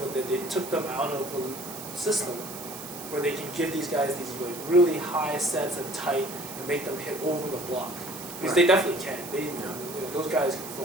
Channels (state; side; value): noise; right; hiss, 12 dB below the sound